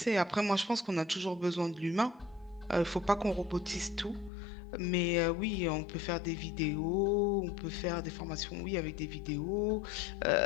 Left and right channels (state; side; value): drops out; right; at 4.3 s